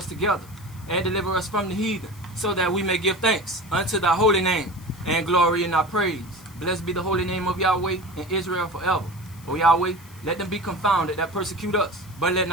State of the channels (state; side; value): noise; left; hiss, 23 dB below the sound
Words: together and deliver us from the heathen, so that we may give thanks unto thy holy name and glory in thy praise. Blessed be the holy name of Yahweh in Israel forever. O Yahweh, let them be confounded that persecute us, but let